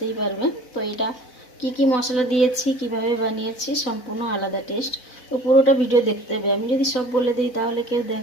পারবেন। তো এটা কি মশলা দিয়েছি, কিভাবে বানিয়েছি, সম্পূর্ণ আলাদা টেস্ট। তো পুরোটা ভিডিও দেখতে হবে। আমি যদি সব বলে দিই তাহলে কেউ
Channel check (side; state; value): right; late; 4.0 ms